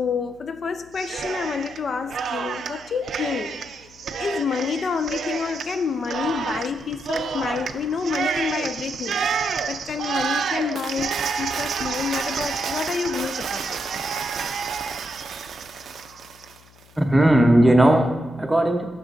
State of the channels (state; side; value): noise; left; hum, 27 dB below the sound